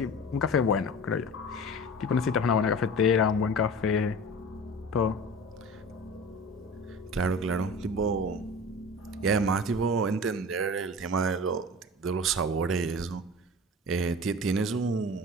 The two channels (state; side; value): normal; both; correlation 0.36